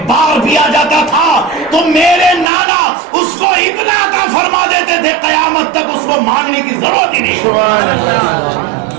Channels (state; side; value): drops out; left; at 2.5 s